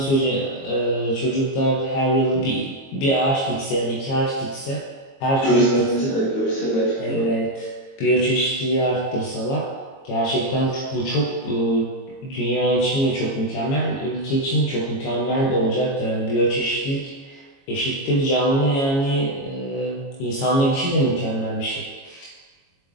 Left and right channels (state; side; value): late; right; 22 ms